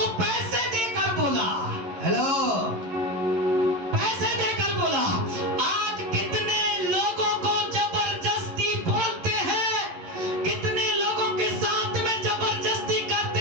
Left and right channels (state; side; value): late; left; 11 ms